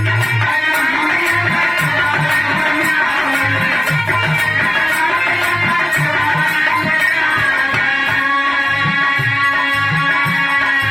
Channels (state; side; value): noise; right; hum, 30 dB below the sound